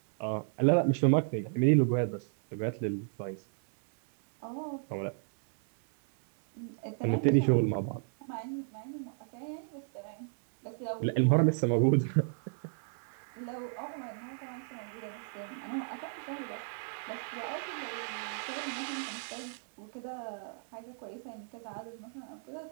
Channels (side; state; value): left; silent; 56 dB below the other